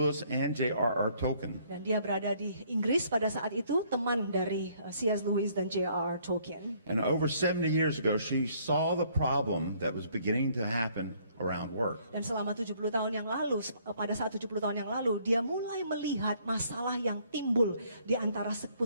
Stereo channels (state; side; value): inverted; both; correlation -0.64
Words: and J.R.R. Tolkien. Dan dia berada di Inggris pada saat itu, teman dari C.S. Lewis dan J.R.R. Tolkien. And over 70 years ago, she saw the problem that was beginning to happen around work. Dan selama 70 tahun yang lalu, pada saat 70 tahun yang lalu, dia mulai melihat masalah yang timbul di antara